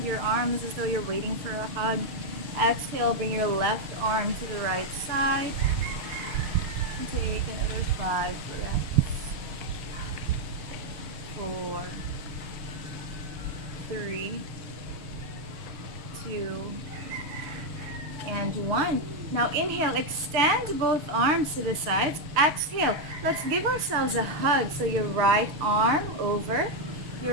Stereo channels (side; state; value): left; late; 6.5 ms